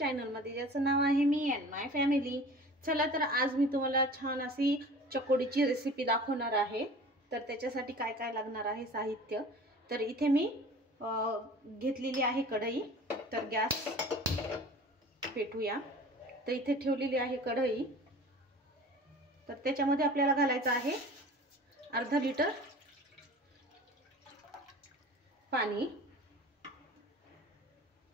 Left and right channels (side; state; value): both; normal; correlation 0.42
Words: ज्याचं नाव आहे मी अँड माय फॅमिली। चला तर आज मी तुम्हाला छान अशी चकोडीची रेसिपी दाखवणार आहे। तर त्याच्यासाठी काय काय लागणार आहे साहित्य, तर इथे मी घेतलेली आहे कढई। तर गॅस पेटूया। तर इथे ठेवलेली आहे कढई। तर त्याच्यामध्ये आपल्याला घालायचं आहे अर्धा लिटर पाणी।